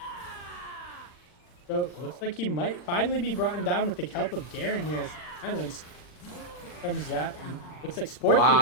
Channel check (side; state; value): right; late; 40 ms